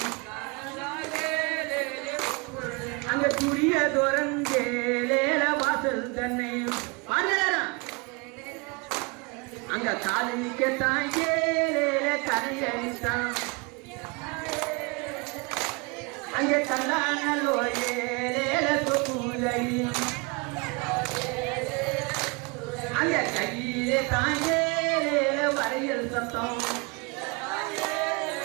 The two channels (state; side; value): quieter; left; 29.6 dB